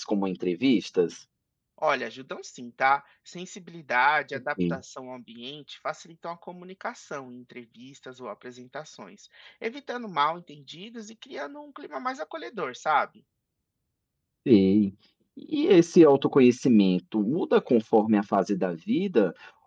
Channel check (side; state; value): both; identical; correlation 1.00